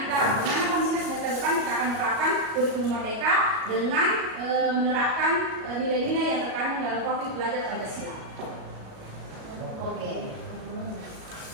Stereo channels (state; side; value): late; left; 37 ms